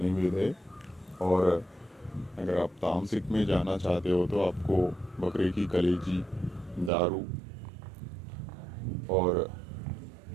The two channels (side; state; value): left; drops out; at 6.9 s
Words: है। और अगर आप तामसिक में जाना चाहते हो तो आपको बकरे की कलेजी, दारू और